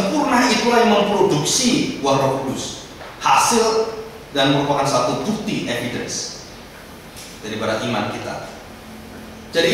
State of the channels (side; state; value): both; identical; correlation 1.00